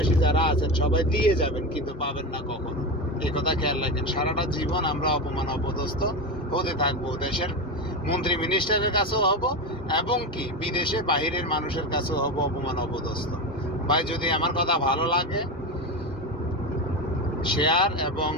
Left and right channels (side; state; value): both; normal; correlation 0.18